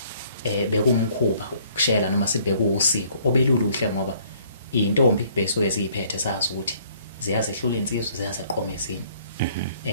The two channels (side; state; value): both; inverted; correlation -0.60